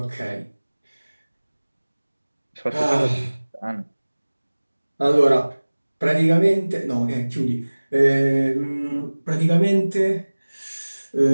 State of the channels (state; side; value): inverted; both; correlation -1.00